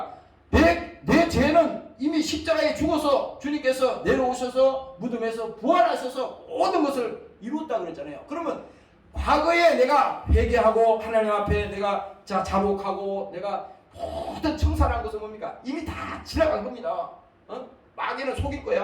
내 죄는 이미 십자가에 죽어서 주님께서 내려오셔서 무덤에서 부활하셔서 모든 것을 이루었다 그랬잖아요. 그러면 과거에 내가 회개하고 하나님 앞에 내가 자복하고 내가 모든 청산한 것은 뭡니까? 이미 다 지나간 겁니다. 마귀는 속일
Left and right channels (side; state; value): both; identical; correlation 1.00